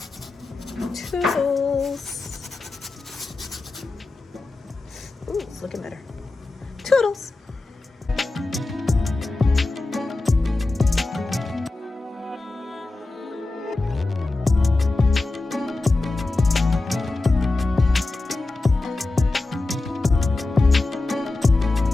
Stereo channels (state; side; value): quieter; right; 3.1 dB